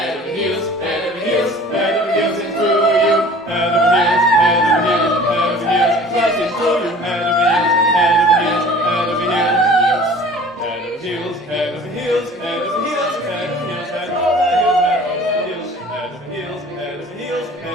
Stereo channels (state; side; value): normal; both; correlation 0.46